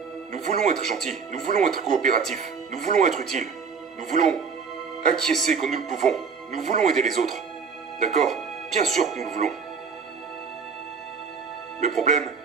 Nous voulons être gentils, nous voulons être coopératifs, nous voulons être utiles, nous voulons acquiescer quand nous le pouvons, nous voulons aider les autres. D'accord? Bien sûr que nous le voulons. Le problème,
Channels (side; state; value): left; quieter; 5.8 dB